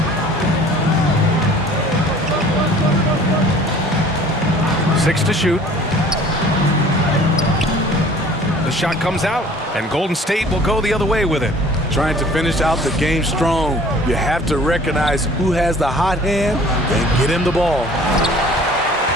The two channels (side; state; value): both; normal; correlation 0.50